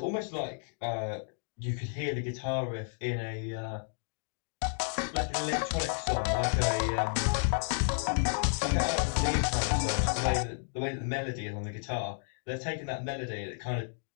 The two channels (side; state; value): right; silent; digital silence